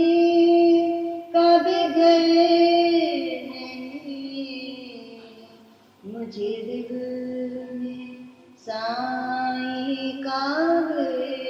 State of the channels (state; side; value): identical; both; correlation 1.00